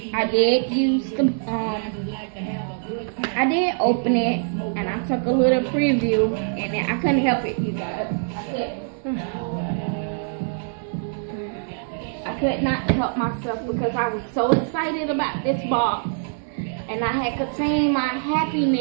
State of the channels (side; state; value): left; silent; digital silence